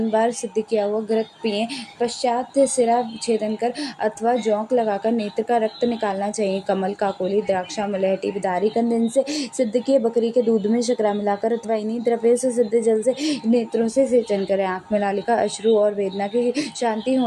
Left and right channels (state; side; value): identical; both; correlation 1.00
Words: बार सिद्ध किया हुआ घृत पिएं। पश्चात सिरा छेदन कर अथवा जौंक लगाकर नेत्र का रक्त निकालना चाहिए। कमल, काकोली, द्राक्षा, मलहटी, बिदारी कंद इनसे सिद्ध किए बकरी के दूध में शकरा मिलाकर अथवा इन्हीं द्रव्यों से सिद्ध जल से नेत्रों से सेचन करें। आंख में लालिका, अश्रु और वेदना की शांति